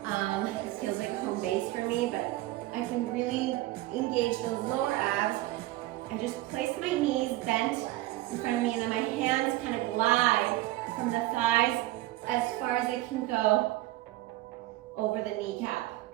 It feels like home base for me, but I can really engage those lower abs. I just place my knees bent in front of me, and then my hands kind of glide from the thighs as far as they can go over the kneecap.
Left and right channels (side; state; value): left; quieter; 17.1 dB